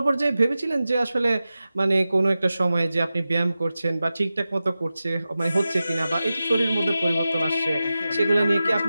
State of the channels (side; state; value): both; inverted; correlation -0.94